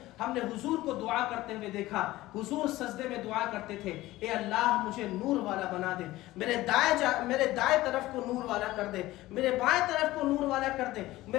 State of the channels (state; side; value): quieter; right; 17.3 dB